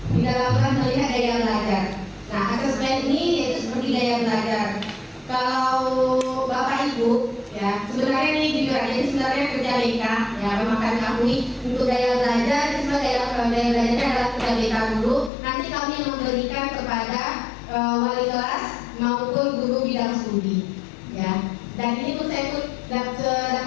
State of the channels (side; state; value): right; drops out; at 15.3 s